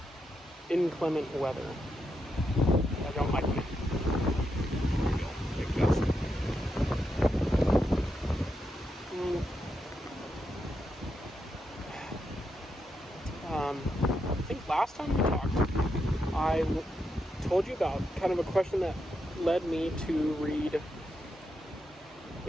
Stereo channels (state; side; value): normal; both; correlation 0.84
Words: inclement weather. I don't like wind. Big gust. I think last time we talked, I told you about kind of a question that led me to read.